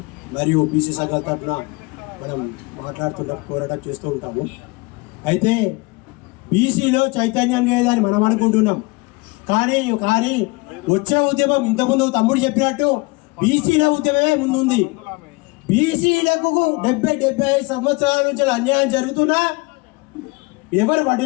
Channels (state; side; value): quieter; right; 26.0 dB